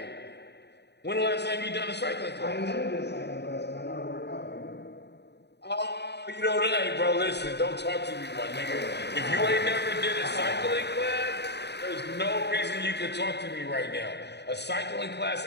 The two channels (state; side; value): late; right; 0.49 ms